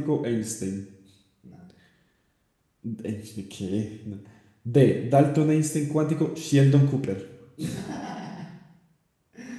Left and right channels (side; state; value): both; identical; correlation 1.00